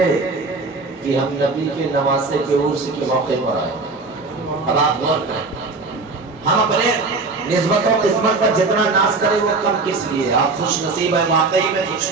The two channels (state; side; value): quieter; left; 3.8 dB